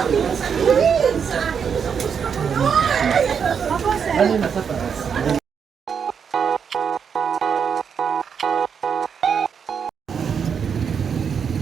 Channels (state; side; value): quieter; left; 6.9 dB